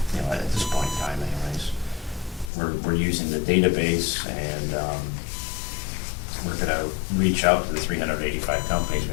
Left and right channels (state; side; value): drops out; right; at 2.5 s